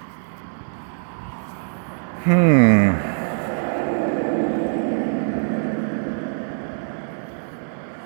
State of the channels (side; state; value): left; silent; digital silence